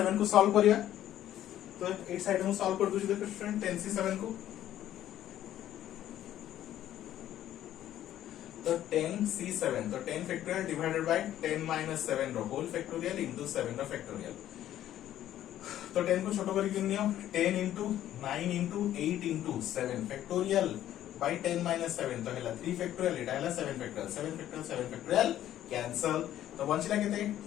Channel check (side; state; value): right; quieter; 12.2 dB